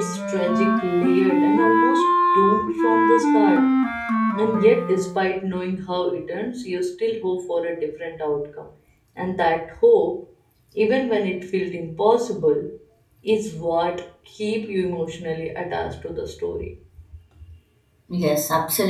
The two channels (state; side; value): identical; both; correlation 1.00